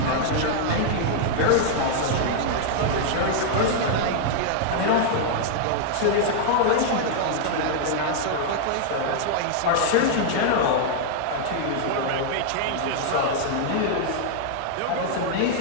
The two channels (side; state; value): both; different; correlation -0.01